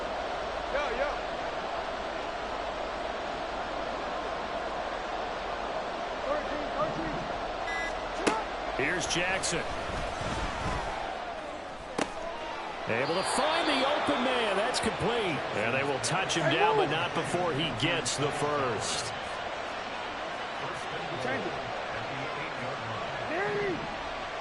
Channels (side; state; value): both; identical; correlation 1.00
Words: Here's Jackson. Able to find the open man. That's complete. And they will touch him down, but not before he gets the first.